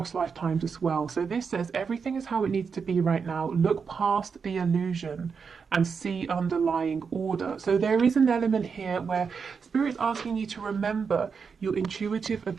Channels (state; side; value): quieter; left; 5.8 dB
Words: lifetimes as well. So this says everything is how it needs to be right now. Look past the illusion and see underlying order. So there is an element here where Spirit's asking you to remember your intuitive